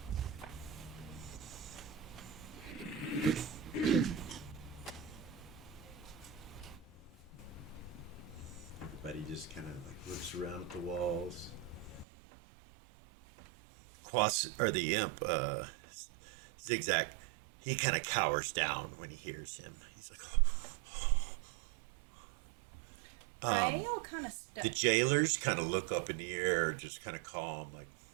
Everybody just kind of like looks around at the walls. Or the imp, Zig-Zak, he kind of cowers down when he hears him. He's like, Rael kind of the jailers kind of look up in the air, just kind of calm, like,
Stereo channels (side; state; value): left; drops out; at 12.1 s